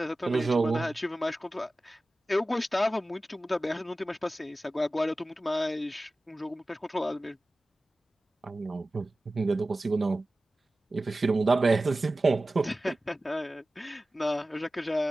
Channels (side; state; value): both; normal; correlation 0.96